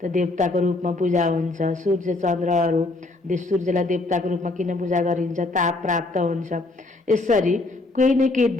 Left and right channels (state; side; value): quieter; right; 3.1 dB